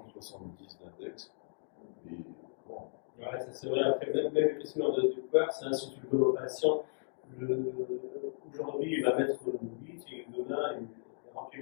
d'index. Et bon. Ouais, ça c'est vrai. Après, même le questionnaire de peur, c'est un surtout de nos patients. Aujourd'hui, il va mettre 8 et demain, il remplit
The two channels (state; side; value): silent; right; digital silence